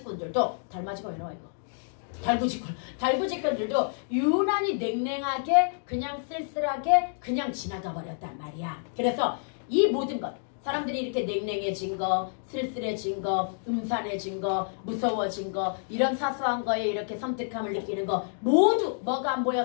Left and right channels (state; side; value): silent; right; digital silence